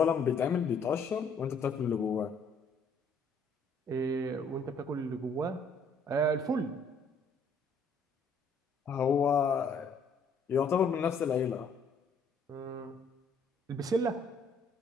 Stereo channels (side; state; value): right; quieter; 3.5 dB